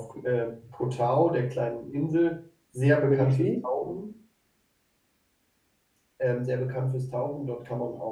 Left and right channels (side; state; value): both; identical; correlation 1.00